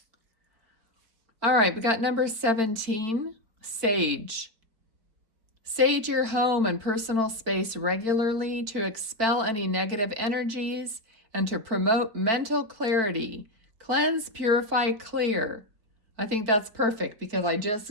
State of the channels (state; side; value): late; left; 4.5 ms